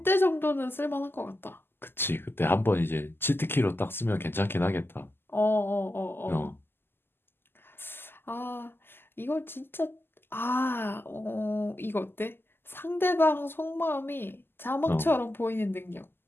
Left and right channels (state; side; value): late; right; 0.11 ms